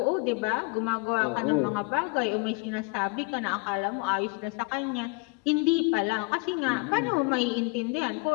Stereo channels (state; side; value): quieter; right; 29.5 dB